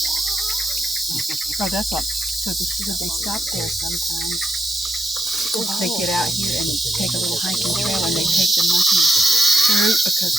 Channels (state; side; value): normal; both; correlation 0.81